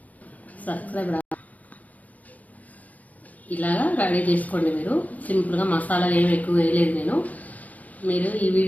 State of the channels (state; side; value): late; right; 0.076 ms